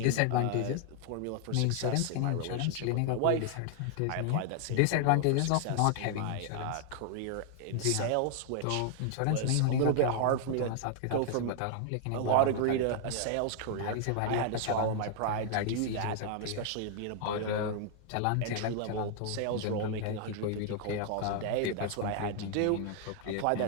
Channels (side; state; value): both; different; correlation 0.00